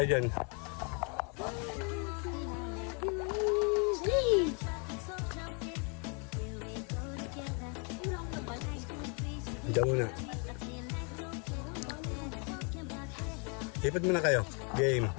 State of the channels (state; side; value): quieter; right; 36.5 dB